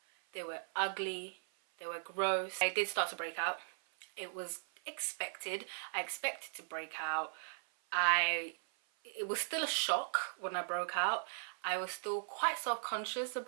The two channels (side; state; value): left; silent; 52 dB below the other